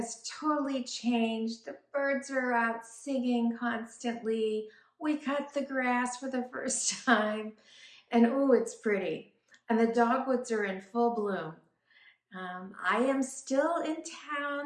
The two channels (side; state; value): both; identical; correlation 1.00